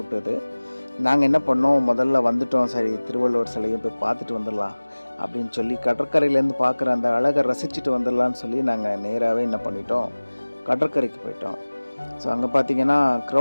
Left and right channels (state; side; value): inverted; both; correlation -1.00